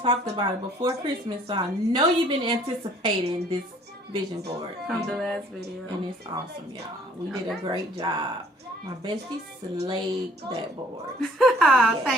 about it before Christmas, so I know you've been anticipating this vision board. From the last video. And it's awesome, y'all. We did a great job. My bestie slayed that board. Yes.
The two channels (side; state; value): both; normal; correlation 0.57